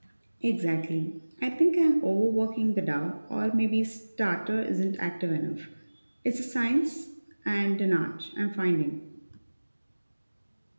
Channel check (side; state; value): both; inverted; correlation -1.00